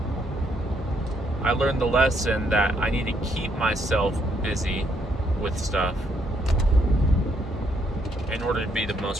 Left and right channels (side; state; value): both; normal; correlation 0.73